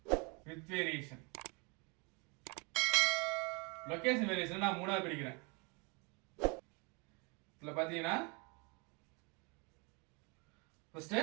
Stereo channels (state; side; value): quieter; left; 31.4 dB